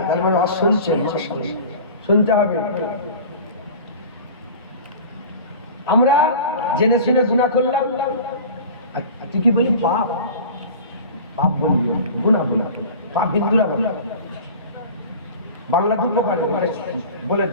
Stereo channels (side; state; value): both; inverted; correlation -0.38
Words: আছে, তার মানে শুনছেন, শুনতে হবে। আমরা জেনে শুনে গুনাহ করলাম, তুই কি বলি? পাপ পাপ বলি, গুনাহ বলি, পাপ বিদ্রোহ বলি, বাংলা দুটো পারে বলে